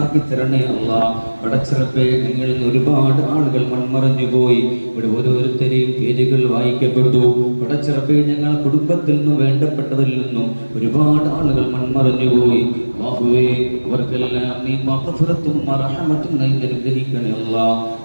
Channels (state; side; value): inverted; both; correlation -1.00